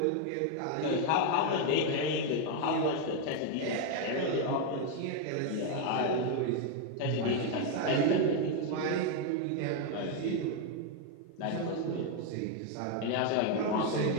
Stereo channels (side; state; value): both; different; correlation 0.01